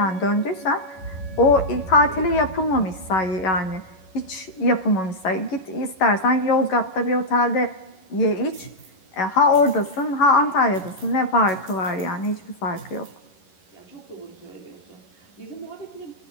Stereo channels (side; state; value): right; late; 11 ms